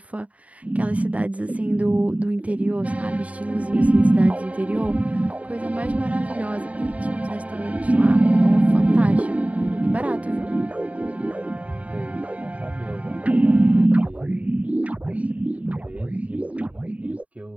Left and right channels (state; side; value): late; left; 0.068 ms